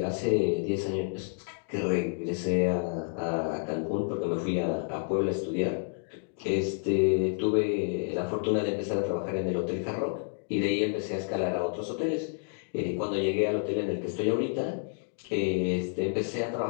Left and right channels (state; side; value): silent; right; digital silence